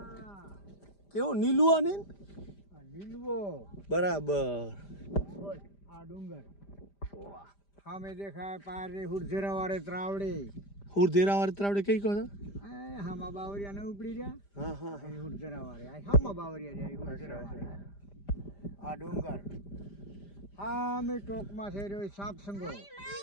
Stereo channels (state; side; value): late; right; 5.0 ms